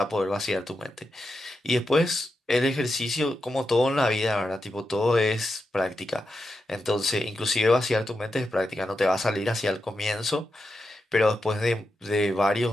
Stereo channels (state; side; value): normal; both; correlation 0.88